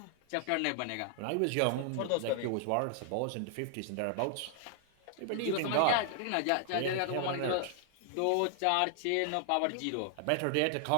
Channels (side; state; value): both; different; correlation 0.00